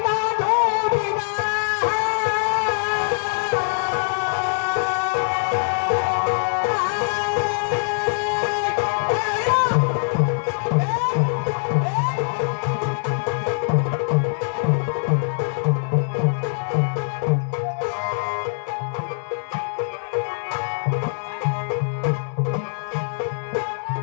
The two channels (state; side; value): silent; right; digital silence